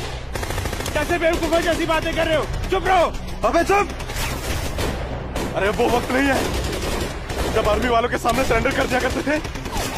कैसे बेवकूफों जैसी बातें कर रहे हो? चुप रहो। अबे चुप! अरे वो वक्त नहीं है जब आर्मी वालों के सामने सरेंडर कर दिया करते थे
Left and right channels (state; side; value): identical; both; correlation 1.00